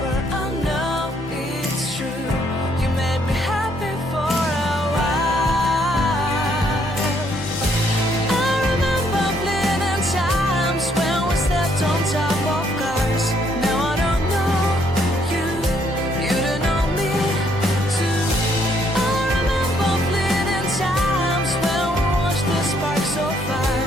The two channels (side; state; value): both; normal; correlation 0.69